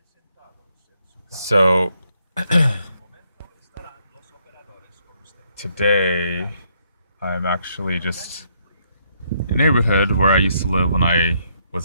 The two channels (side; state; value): both; inverted; correlation -0.73